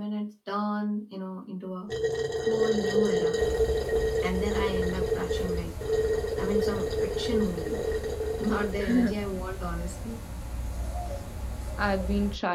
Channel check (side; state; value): both; identical; correlation 1.00